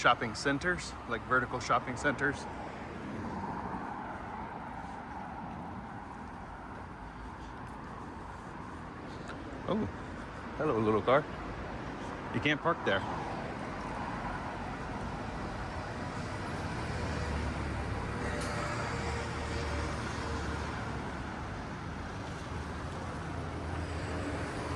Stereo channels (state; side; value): identical; both; correlation 1.00